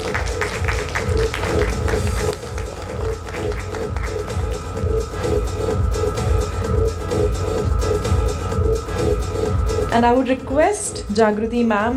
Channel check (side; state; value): both; identical; correlation 1.00